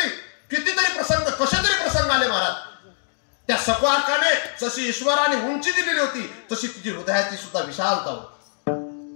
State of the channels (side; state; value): right; silent; digital silence